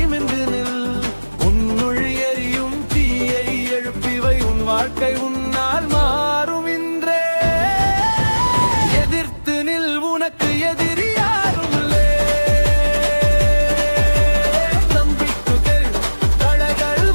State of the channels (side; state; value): both; inverted; correlation -1.00